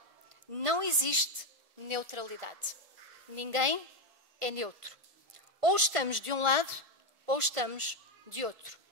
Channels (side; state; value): left; late; 1.5 ms